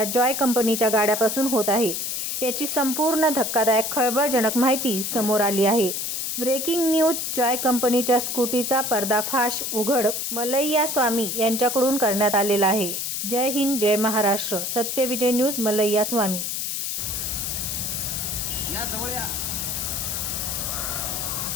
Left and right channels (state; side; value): noise; left; hiss, 2 dB below the sound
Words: जॉय कंपनीच्या गाड्यापासून होत आहे। याची संपूर्ण धक्कादायक खळबळजनक माहिती समोर आली आहे। ब्रेकिंग न्यूज जॉय कंपनीच्या स्कूटीचा पर्दाफाश उघड मलैया स्वामी यांच्याकडून करण्यात आलेला आहे। जय हिंद, जय महाराष्ट्र। सत्य विजय न्यूज, मलैया स्वामी।